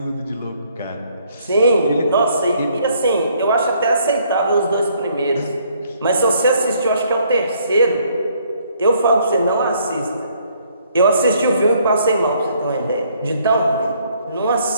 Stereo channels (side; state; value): both; inverted; correlation -0.66